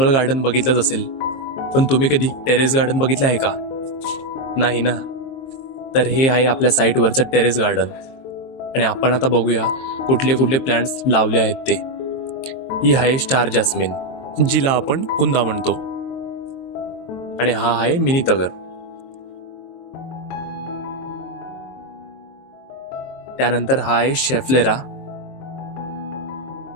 गार्डन बघितलंच असेल, पण तुम्ही कधी टेरेस गार्डन बघितलं आहे का? नाही ना. तर हे आहे आपल्या साईटवरचं टेरेस गार्डन. आणि आपण आता बघूया कुठले कुठले प्लांट्स लावले आहेत ते. ही आहे स्टार जास्मिन, जिला आपण कुंदा म्हणतो. आणि हा आहे मिनी तगर. त्यानंतर हा आहे शेफलेरा.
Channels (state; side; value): late; right; 22 ms